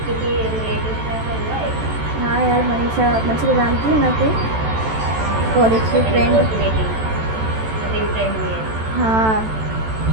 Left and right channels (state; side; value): late; left; 14 ms